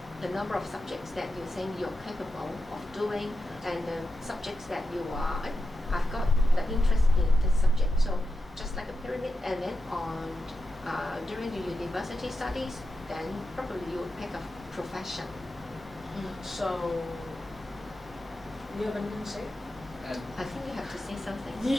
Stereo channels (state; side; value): normal; both; correlation 0.88